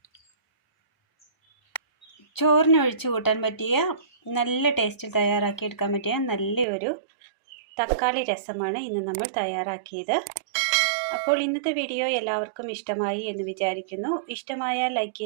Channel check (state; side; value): drops out; left; at 6.7 s